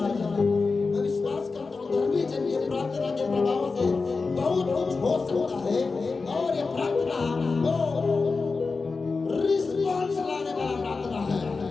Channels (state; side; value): quieter; right; 4.3 dB